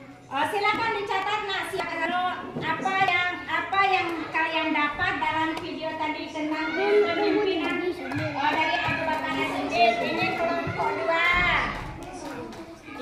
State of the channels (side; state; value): both; identical; correlation 1.00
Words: Silakan dicatat nak, apa yang kalian dapat dalam video tadi tentang kepemimpinan dari Abu Bakar As-Siddiq. Ini kelompok